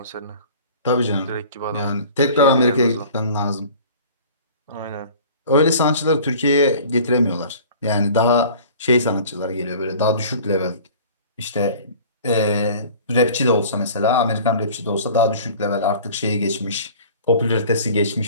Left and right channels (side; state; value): both; inverted; correlation -0.45